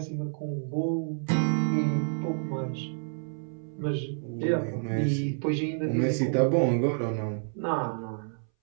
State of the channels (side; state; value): left; silent; 59 dB below the other